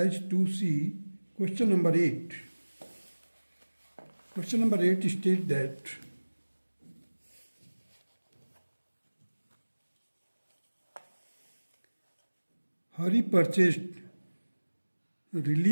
2C, question number 8. Question number 8 states that Hari purchased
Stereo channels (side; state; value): both; inverted; correlation -1.00